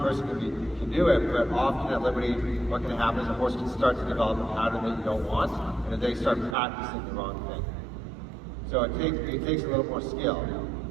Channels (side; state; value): left; drops out; at 6.6 s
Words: can do it, but often at Liberty, what can happen is a horse can start to develop a pattern that you don't want, and then they start practicing the wrong thing. So it takes a little more skill